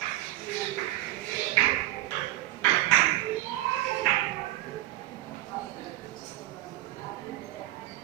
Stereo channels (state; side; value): quieter; left; 16.3 dB